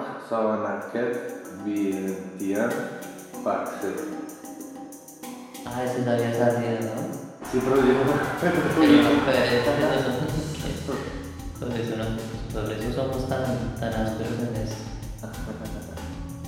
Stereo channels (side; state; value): both; identical; correlation 1.00